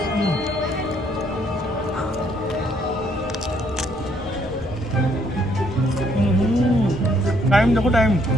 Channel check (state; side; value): noise; right; rumble, 20 dB below the sound